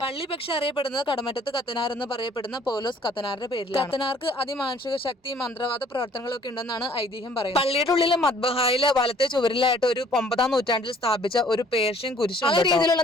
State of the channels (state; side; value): normal; both; correlation 0.57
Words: പള്ളി പക്ഷെ അറിയപ്പെടുന്നത് കടമറ്റത്ത് കത്തനാർ എന്ന് പറയപ്പെടുന്ന പൗലോസ് കത്തനാറിന്റെ പേരിൽ. കത്തനാർക്ക് അതിമാനുഷിക ശക്തി, മന്ത്രവാദ പ്രവർത്തനങ്ങളൊക്കെ ഉണ്ടെന്നാണ് ഐതിഹ്യം പറയുന്നത്. പള്ളിയുടെ ഉള്ളിലെ മദ്ബഹായിലെ വലത്തെ ചുവരിലായിട്ട് ഒരു 9-ാം നൂറ്റാണ്ടിൽ സ്ഥാപിച്ച ഒരു പേർഷ്യൻ കുരിശ് ആ രീതിയിലുള്ള